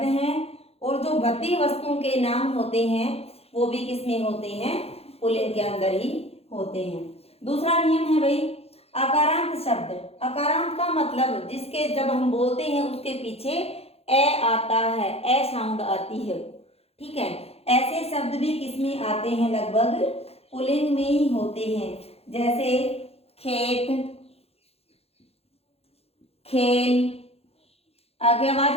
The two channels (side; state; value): right; late; 0.29 ms